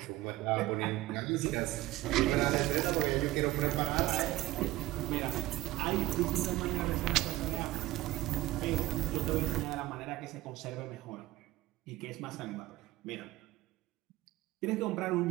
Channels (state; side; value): quieter; left; 17.4 dB